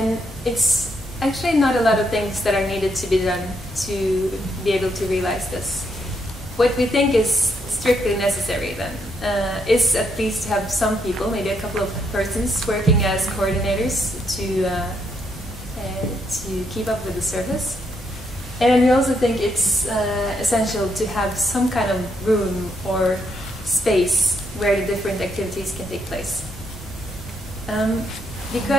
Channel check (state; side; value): normal; both; correlation 0.76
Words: it's actually not a lot of things that are needed to be done to be able to realize this. What we think is strictly necessary then is at least to have some people, maybe a couple of persons, working as coordinators to keep up with the service. And we also think it's essential to have some kind of room or space where the different activities can take place.